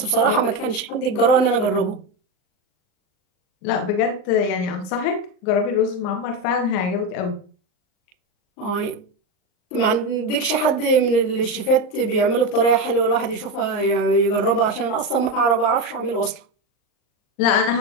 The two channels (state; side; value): late; right; 39 ms